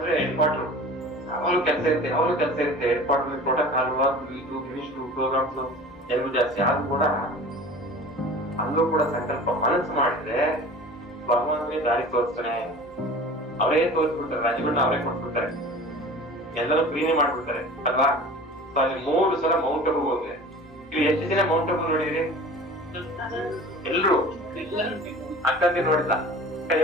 head quarter, ಯಾವಾಗಲೂ ಕೆಲಸ ಇರುತ್ತೆ ಹೆಡ್ ಕ್ವಾರ್ಟರ್, ಪ್ರೋಟೋಕಾಲ್ ಇದು ಮಿನಿಸ್ಟ್ರು ಪ್ರೋಗ್ರಾಮ್ಸ್ ಎಲ್ಲೂ ಜಾಸ್ತಿ. ಆದ್ರೂ ಕೂಡ ಅಲ್ಲೂ ಕೂಡ ಸಂಕಲ್ಪ ಮನಸ್ಸು ಮಾಡಿದ್ರೆ ಭಗವಂತನೇ ದಾರಿ ತೋರಿಸ್ತಾನೆ. ಅವರೇ ತೋರಿಸ್ಬಿಡ್ತಾರೆ, ರಾಜ್ಯಗಳನ್ನ ಅವರೇ ಕೊಟ್ಬಿಡ್ತಾರೆ, ಎಲ್ಲರೂ ಫ್ರೀನೇ ಮಾಡ್ಬಿಡ್ತಾರೆ ಅಲ್ವಾ. ಸೊ ಅಲ್ಲಿ 3 ಸಲ ಮೌಂಟ್ ಅಬು ಹೋದ್ರೆ, ಇಲ್ಲಿ ಎಷ್ಟು ಜನ ಮೌಂಟ್ ಅಬು ನೋಡಿದ್ರಿ? ಎಲ್ರು ಅಕ್ಕಂದಿ ನೋಡಿಲ್ಲ?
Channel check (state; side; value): normal; both; correlation 0.40